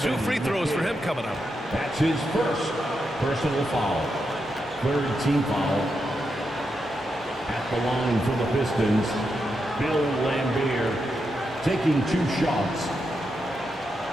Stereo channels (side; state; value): both; normal; correlation 0.85